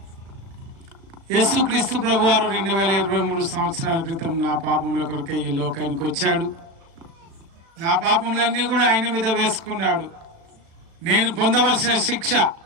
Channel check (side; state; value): left; late; 36 ms